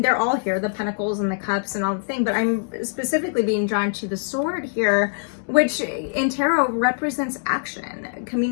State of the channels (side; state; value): right; silent; digital silence